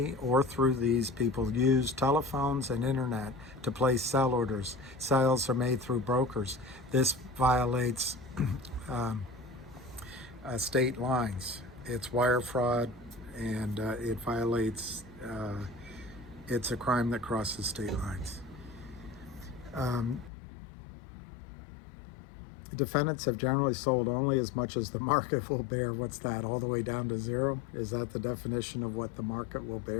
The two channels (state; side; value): drops out; right; at 20.3 s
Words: or through these people use telephones and internet to place sell orders. Sales are made through brokers. This violates state lines. It's wire fraud, and it violates, it's a crime that crosses state lines. Defendants have generally sold only as much as the market will bear. What's that, all the way down to zero? Is that the definition of what the market will